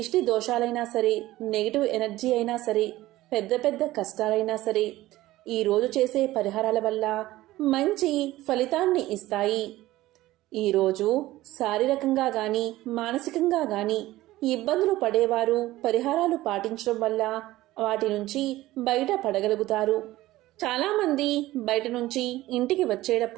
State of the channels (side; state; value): left; quieter; 16.7 dB